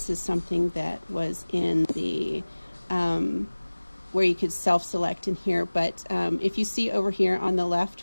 is something that was in the where you could self-select in here, but if you see over here on the left,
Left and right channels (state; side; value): inverted; both; correlation -1.00